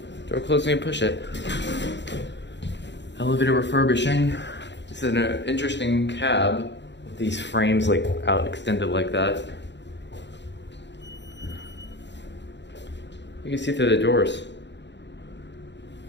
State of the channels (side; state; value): right; late; 0.52 ms